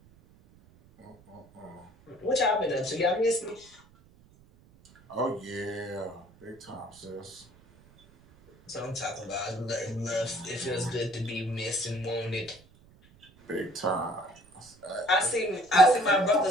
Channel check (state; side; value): noise; right; rumble, 27 dB below the sound